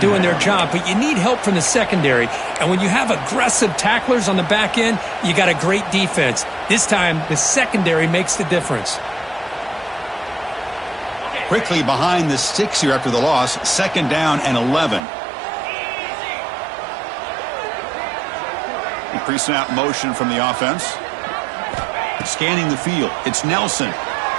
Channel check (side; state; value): left; drops out; at 15.0 s